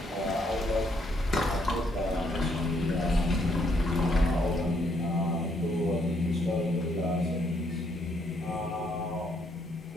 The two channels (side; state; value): both; normal; correlation 0.72